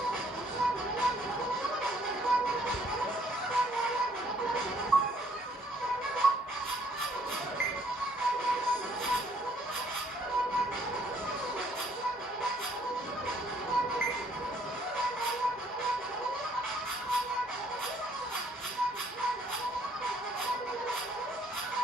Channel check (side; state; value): both; normal; correlation 0.65